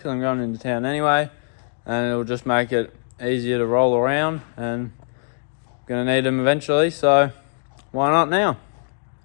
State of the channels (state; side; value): silent; right; digital silence